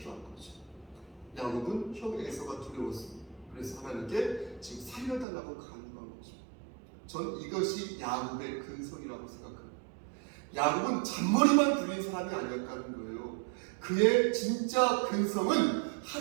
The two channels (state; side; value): drops out; left; at 5.2 s